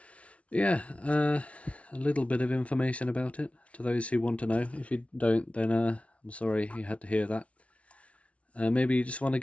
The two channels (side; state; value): right; late; 0.063 ms